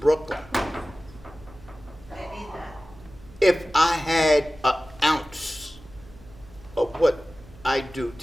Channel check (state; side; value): noise; right; hum, 22 dB below the sound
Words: They need that. If I had an ounce of what I do